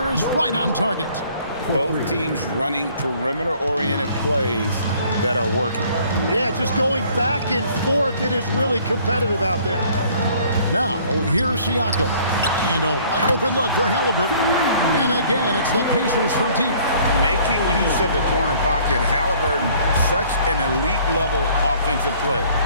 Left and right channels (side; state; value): both; inverted; correlation -0.57